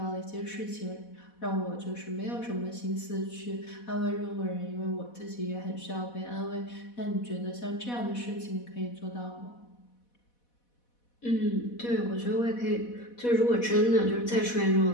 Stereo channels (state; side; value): late; right; 4.1 ms